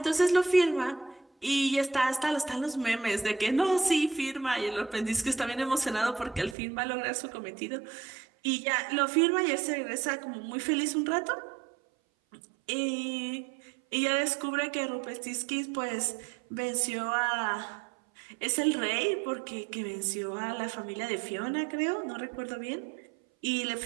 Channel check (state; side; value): drops out; left; at 6.6 s